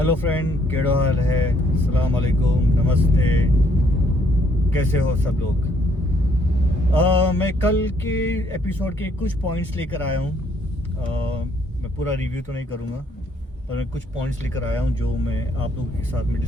Friend, केड़ो हाल है? अस्सलाम वालेकुम, नमस्ते। कैसे हो सब लोग? मैं कल के एपिसोड के कुछ पॉइंट्स लेकर आया हूँ। मैं पूरा रिव्यू तो नहीं करूँगा, पर मैं कुछ पॉइंट्स लेकर आया हूँ जो मैं आप लोगों के साथ में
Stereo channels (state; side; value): normal; both; correlation 0.67